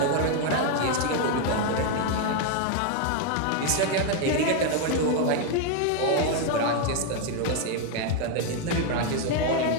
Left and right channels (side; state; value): both; different; correlation 0.01